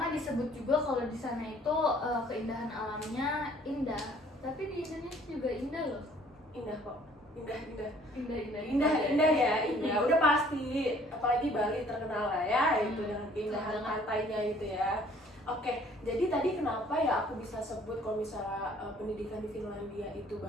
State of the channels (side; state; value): both; normal; correlation 0.57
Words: disebut juga kalau di sana itu keindahan alamnya indah. Tapi di Indonesia juga indah loh. Indah kok. Indah. Indah Indah. Udah pasti. Apalagi Bali terkenal lah ya itu dengan keindahan pantainya itu ya. Oke, jadi tadi kenapa ya aku bisa sebut kalau misalnya pendidikan di Finlandia itu